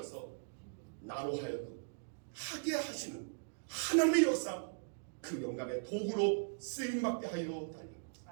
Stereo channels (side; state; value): left; silent; digital silence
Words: 나로 하여금 하게 하시는 하나님의 역사 그 영광의 도구로 쓰임받게 하여 달라